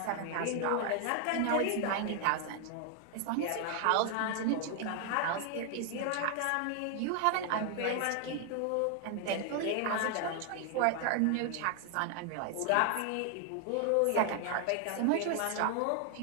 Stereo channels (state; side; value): different; both; correlation 0.00